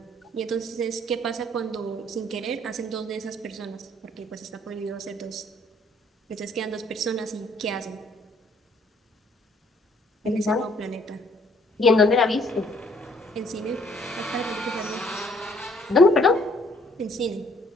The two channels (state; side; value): normal; both; correlation 0.62